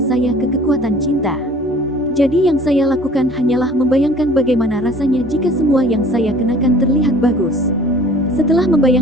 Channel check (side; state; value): both; normal; correlation 0.49